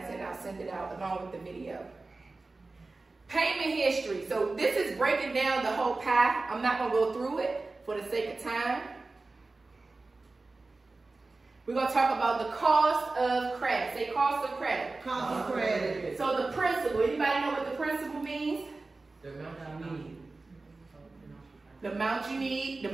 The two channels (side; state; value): left; quieter; 3.5 dB